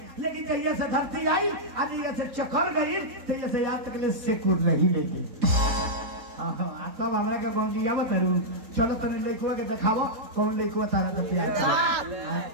लेकिन जहिया से धरती आई आज जैसे चकर गई तो जैसे याद तक ले सेकुर नहीं लेगी। तब हमरा के गौंजिया बतारू चलो तने लइकवा के देखावो कौन लइकवा तारा के प्यार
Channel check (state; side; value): late; left; 3.9 ms